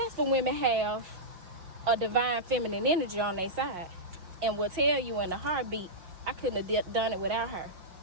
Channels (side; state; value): left; late; 5.9 ms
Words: women have a divine feminine energy on their side and will tell you in a heartbeat, I couldn't have done it without her.